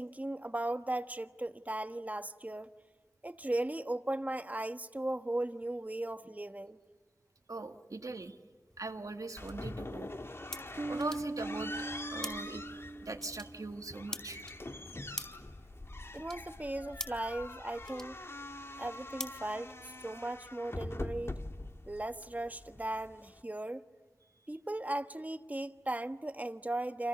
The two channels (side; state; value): both; normal; correlation 0.84